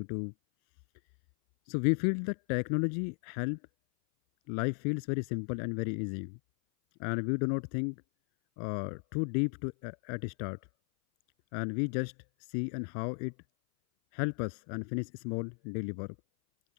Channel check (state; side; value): silent; right; 54 dB below the other